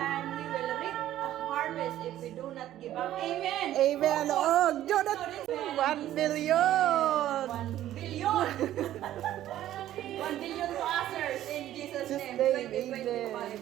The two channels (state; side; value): quieter; left; 12.9 dB